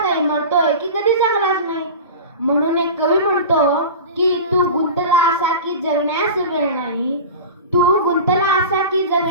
मरतोय की कधी जगलाच नाही। म्हणून एक कवी म्हणतो की तू गुंतला असा की जगण्यास वेळ नाही, तू गुंतला असा की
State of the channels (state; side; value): inverted; both; correlation -0.31